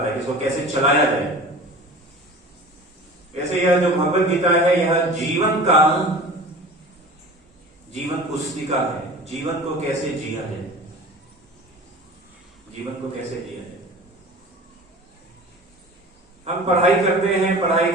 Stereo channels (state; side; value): normal; both; correlation 0.39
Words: है, इसको कैसे चलाया जाए। ऐसे यह जो भगवत गीता है, यह जीवन पुस्तिका है। जीवन को कैसे जिया जाए, जीवन को कैसे जिया जाए। हम पढ़ाई करते हैं, पढ़ाई